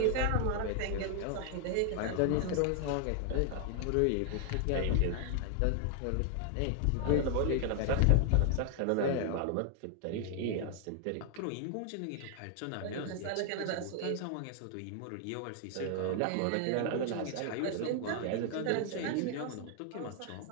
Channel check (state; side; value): different; both; correlation 0.00